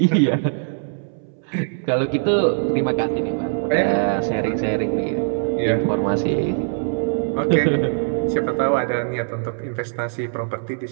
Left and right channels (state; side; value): silent; left; 65 dB below the other